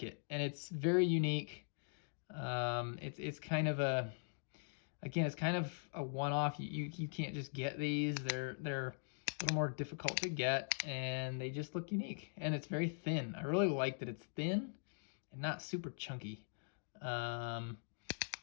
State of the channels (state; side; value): silent; right; digital silence